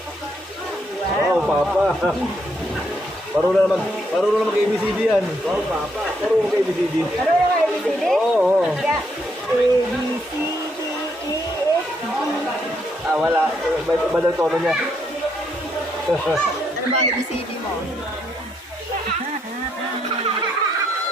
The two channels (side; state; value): both; normal; correlation 0.75